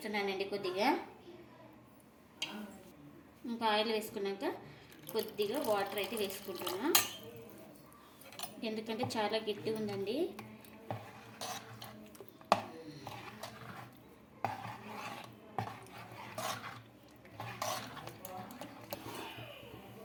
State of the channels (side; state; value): both; identical; correlation 1.00